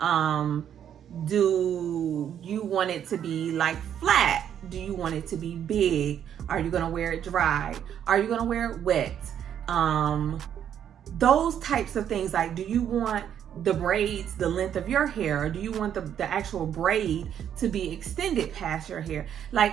Do you want it to be like flat? Do you want it to be big? Are you gonna wear it dry? Are you gonna wear it wet? Those types of things. Like, do you want the braids the length of your hair, or do you want the actual braid to be extended past your hair?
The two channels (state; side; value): quieter; left; 9.4 dB